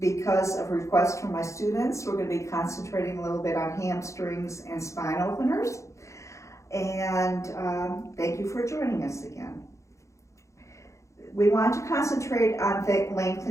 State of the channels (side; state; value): right; late; 0.15 ms